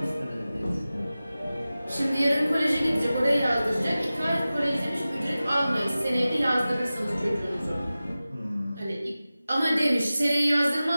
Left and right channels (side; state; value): both; inverted; correlation -0.96